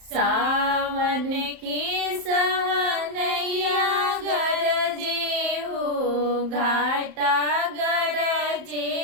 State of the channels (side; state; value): left; late; 31 ms